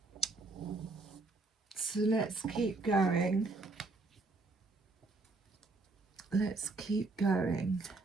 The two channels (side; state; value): left; quieter; 3.4 dB